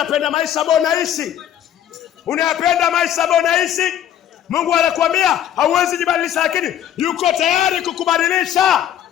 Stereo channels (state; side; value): quieter; right; 10.8 dB